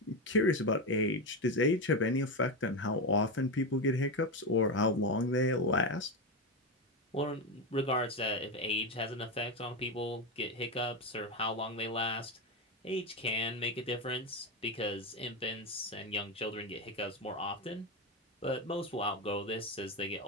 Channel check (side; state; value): both; normal; correlation 0.13